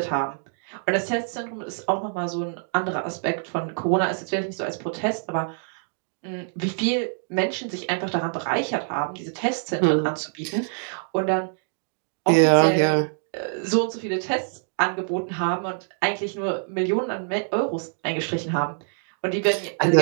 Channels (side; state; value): left; silent; 62 dB below the other